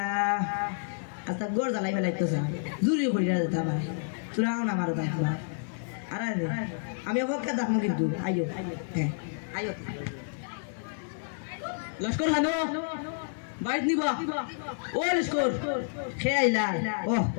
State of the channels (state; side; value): silent; right; digital silence